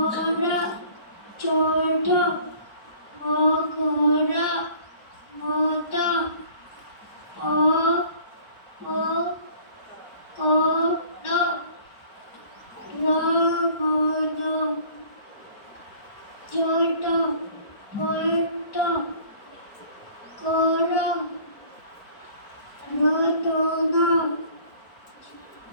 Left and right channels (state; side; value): late; right; 4.9 ms